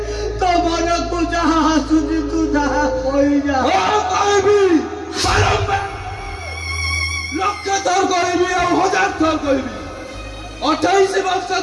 ତୋ ମନକୁ ଯାହା ଆସୁଛି ତୁ ଯାହା କହିଯା। କହିବି ବାରମ୍ବାର, ଲକ୍ଷ ଥର କହିବି ଆଉ 1000 ଥର କହିବି। 28 ବର୍ଷ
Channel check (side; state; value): both; identical; correlation 1.00